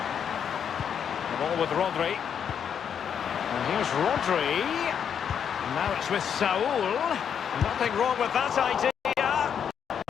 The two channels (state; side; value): quieter; right; 8.0 dB